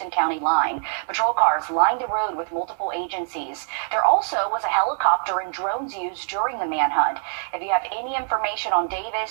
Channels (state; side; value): silent; left; digital silence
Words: County line. Patrol cars lined the road with multiple agencies. There also was a helicopter and drones used during the manhunt. If you have any information on